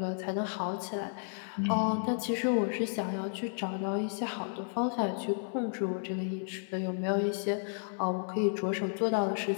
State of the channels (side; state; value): right; silent; 56 dB below the other